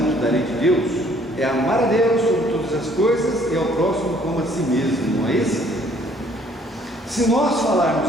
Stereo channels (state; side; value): normal; both; correlation 0.61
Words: da lei de Deus é amar a Deus sobre todas as coisas e ao próximo como a si mesmo, não é esse? Se nós